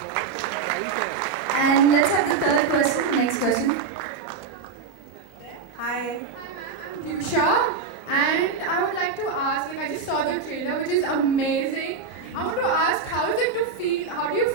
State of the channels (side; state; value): left; quieter; 5.2 dB